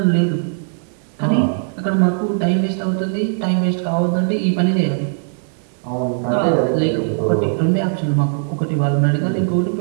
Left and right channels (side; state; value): left; silent; digital silence